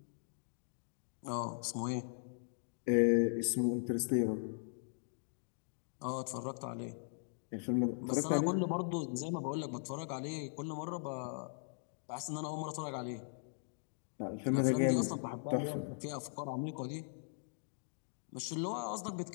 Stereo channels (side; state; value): right; silent; digital silence